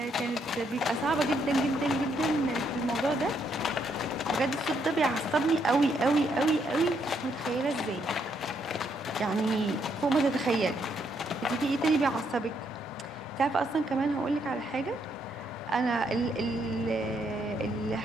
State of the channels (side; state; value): both; normal; correlation 0.74